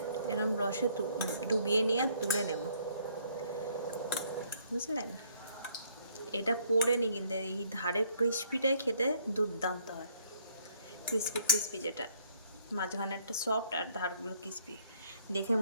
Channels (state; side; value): inverted; both; correlation -0.65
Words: এরকম রসে ডুবিয়ে নিয়ে তুলে নেব, বুঝলেন? এটা পড়ে নি, কিন্তু এই ধারে ক্রিস্পিটাই খেতে দুর্দান্ত হয়, ক্রিস্পি যেটা। মাঝখানে একটা সফট আর ধারগুলো ক্রিসপি, দেখে